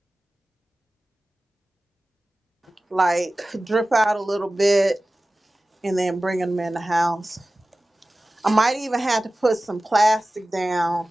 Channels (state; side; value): normal; both; correlation 0.96